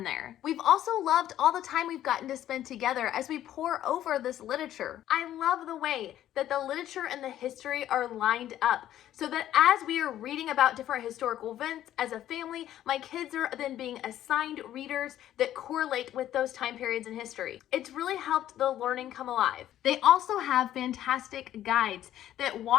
there. We've also loved all the time we've gotten to spend together as we pore over this literature. I love the way that the literature and the history are lined up so that as we are reading about different historical events as a family, my kids are then being assigned readers that correlate with those time periods in history. It's really helped the learning come alive. They also have fantastic guides that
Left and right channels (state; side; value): quieter; right; 12.2 dB